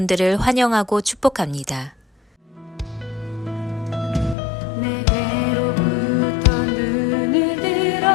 환영하고 축복합니다. 내게로부터 눈을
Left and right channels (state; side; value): drops out; right; at 4.4 s